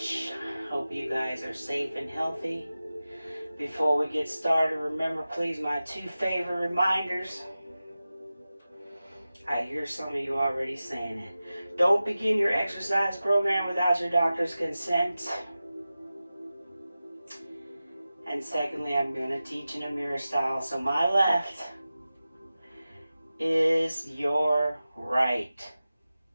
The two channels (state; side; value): inverted; both; correlation -0.95